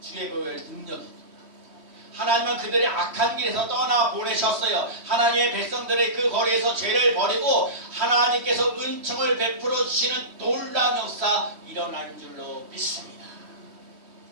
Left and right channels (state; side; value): late; left; 3.1 ms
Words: 주의 보혈 능력이 있도다. 하나님은 그들의 악한 길에서 떠나 보내셨어요. 하나님의 백성들의 그 거리에서 죄를 버리고 하나님께서 은총을 베풀어 주시는 놀라운 역사 일어날 줄로 믿습니다.